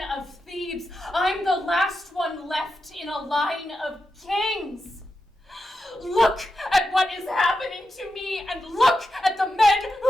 of Thebes, I'm the last one left in a line of kings. Look at what is happening to me, and look at the men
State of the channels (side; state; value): both; normal; correlation 0.88